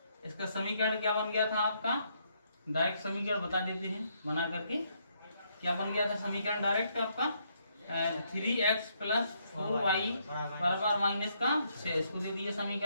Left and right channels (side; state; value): both; inverted; correlation -0.74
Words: इसका समीकरण क्या बन गया था आपका, डायरेक्ट समीकरण बता देते हैं बना करके, क्या बन गया था समीकरण डायरेक्ट आपका, 3x प्लस 4y बराबर माइनस का 6, इसको दे दिए